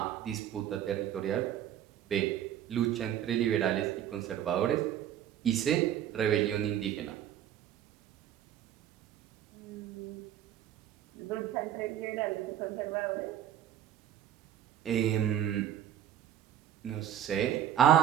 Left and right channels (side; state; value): left; quieter; 10.8 dB